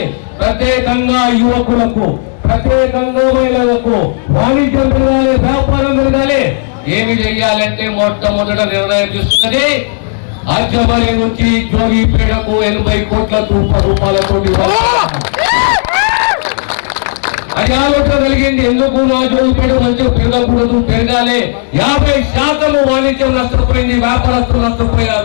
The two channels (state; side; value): silent; right; digital silence